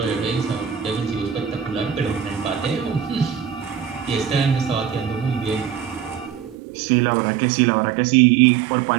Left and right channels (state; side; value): drops out; left; at 6.6 s